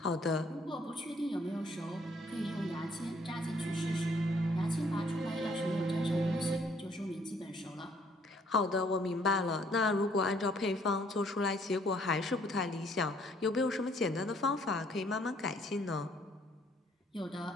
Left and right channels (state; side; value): normal; both; correlation 0.64